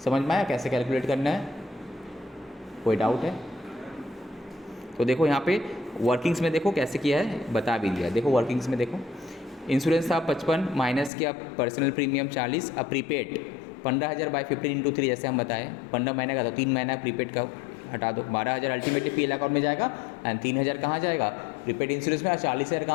समझ में आया कैसे कैलकुलेट करना है? कोई डाउट है? तो देखो यहाँ पे वर्किंग्स में देखो कैसे किया है, बता भी दिया। देखो वर्किंग्स में देखो, इंश्योरेंस था 55 माइनस किया पर्सनल प्रीमियम 40, अब प्रीपेड 15,000 बाई 15 इंटू 3 जैसे हम बताएं, 15 महीने का, तो 3 महीना प्रीपेड का हटा दो, 12,000 अल्टीमेटली पीएल अकाउंट में जाएगा, एंड 3,000 कहाँ जाएगा? प्रीपेड इंश्योरेंस में, और 40,000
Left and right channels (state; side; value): drops out; right; at 11.1 s